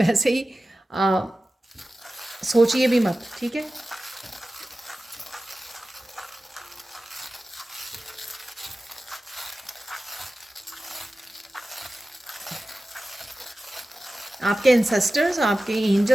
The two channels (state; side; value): normal; both; correlation 0.95